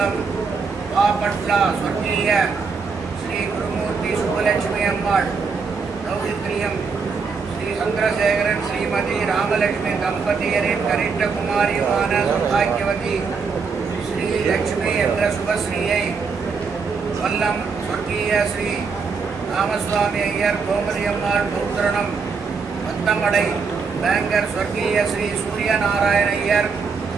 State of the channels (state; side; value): quieter; left; 5.2 dB